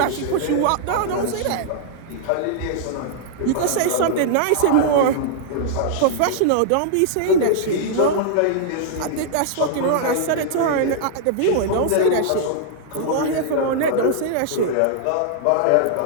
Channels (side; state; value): both; different; correlation -0.01